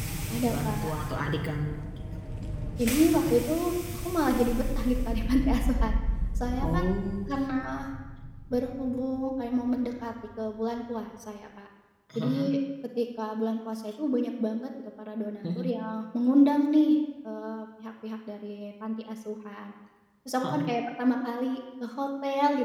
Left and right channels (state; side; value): identical; both; correlation 1.00